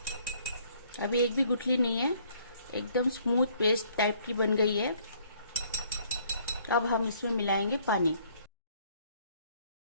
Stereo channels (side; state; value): both; inverted; correlation -0.62